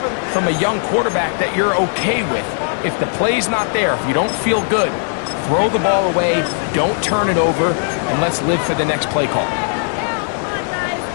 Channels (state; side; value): silent; right; 61 dB below the other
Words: from a young quarterback that you're okay with. If the play's not there, if you don't feel good, throw the ball away, don't turn it over, and let's live for the next play call.